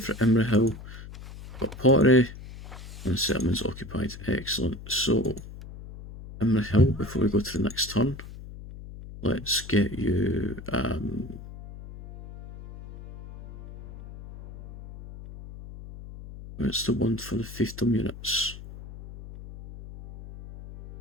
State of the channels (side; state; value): left; noise; hum, 14 dB below the sound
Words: for Imrahil, got pottery, and settlements occupied. Excellent. So, Imrahil, before we go to the next turn, let's get you. It's the one for the fiefdom units.